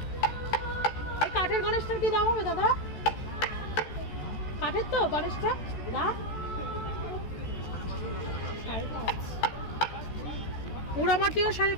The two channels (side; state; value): right; late; 14 ms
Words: এই কাঠের গণেশটার কি দাম হবে দাদা? কাঠের তো গণেশটা দাম 5.5, পোড়ামাটিও